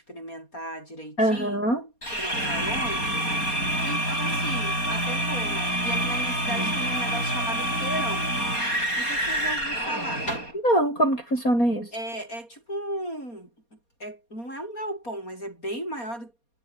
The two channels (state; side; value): late; right; 4.2 ms